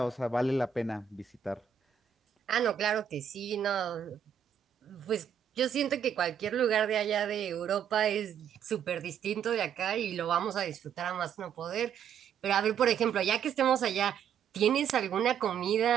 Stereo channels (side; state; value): left; quieter; 8.3 dB